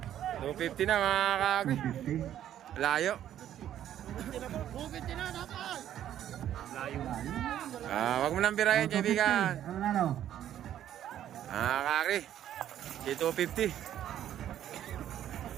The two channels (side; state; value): left; quieter; 11.2 dB